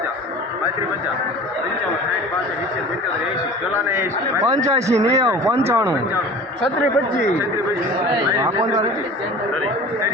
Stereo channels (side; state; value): both; normal; correlation 0.40